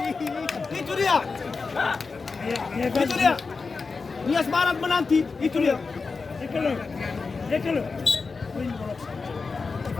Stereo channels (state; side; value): quieter; right; 4.5 dB